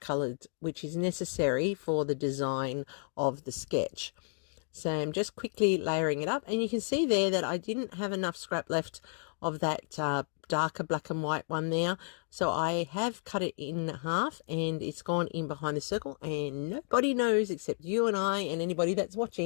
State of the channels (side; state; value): right; silent; digital silence